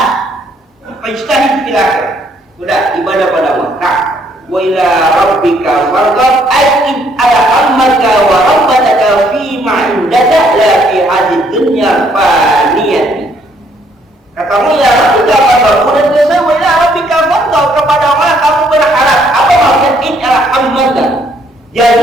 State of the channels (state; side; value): normal; both; correlation 0.68